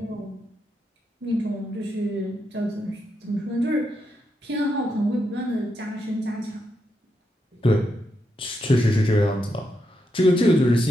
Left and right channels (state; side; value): normal; both; correlation 0.83